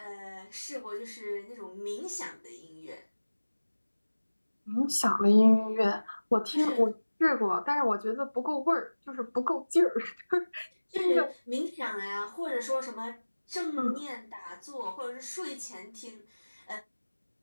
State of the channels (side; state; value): both; inverted; correlation -1.00